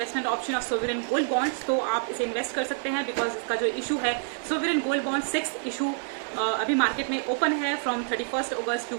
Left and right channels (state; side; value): silent; left; 58 dB below the other